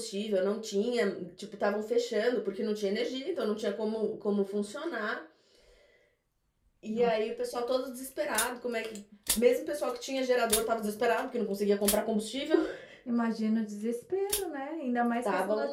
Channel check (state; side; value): identical; both; correlation 1.00